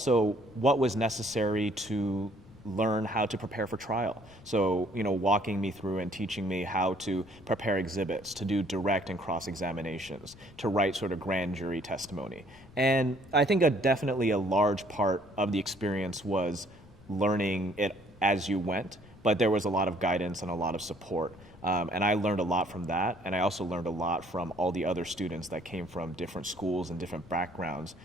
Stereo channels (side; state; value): left; noise; rumble, 23 dB below the sound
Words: what was necessary to learn how to prepare for trial. So, walking me through and teaching me how to prepare exhibits, to do direct and cross-examinations, to write sort of grand jury testimony. And I think definitely a large part of the experience was learning it as you went, but there was a lot of guidance and a lot of support. And I learned a lot from that, and I also learned a lot from all the other students that came from different schools and different backgrounds